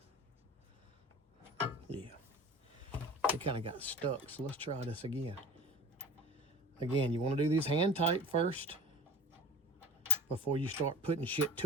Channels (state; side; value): normal; both; correlation 0.40